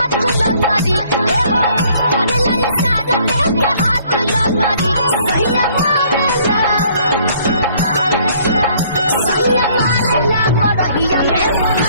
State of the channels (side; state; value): both; inverted; correlation -0.61